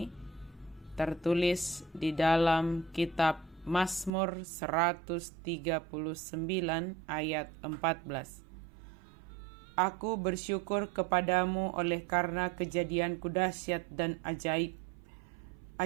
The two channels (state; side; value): drops out; left; at 4.1 s